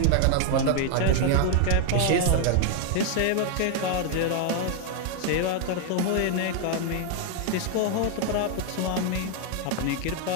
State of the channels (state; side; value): different; both; correlation 0.00